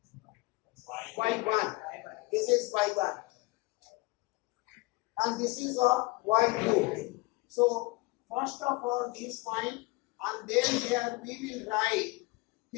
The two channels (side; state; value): right; quieter; 24.9 dB